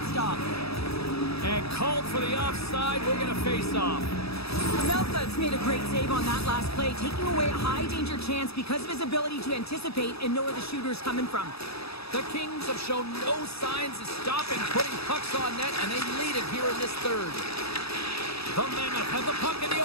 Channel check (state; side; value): late; right; 0.78 ms